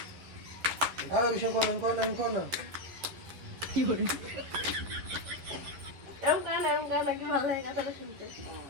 আর বিষয় কোন না কি করে এরকম গান নাকি ভালো লাগে কথাটা শুনতে।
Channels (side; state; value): left; late; 11 ms